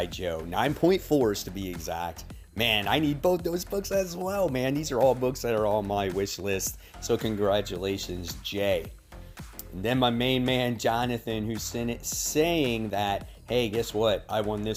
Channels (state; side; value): identical; both; correlation 1.00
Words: Joe. 9.4s to be exact. Man, I need both those books as well, man. These are all books that are on my wish list. So congratulations, Jay. And then my main man, Jonathan, who's saying that, hey, guess what? I won